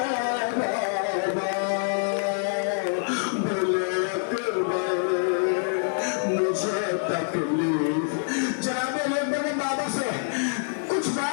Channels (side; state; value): right; silent; digital silence